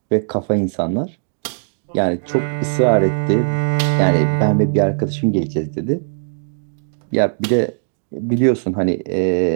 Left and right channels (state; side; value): silent; left; digital silence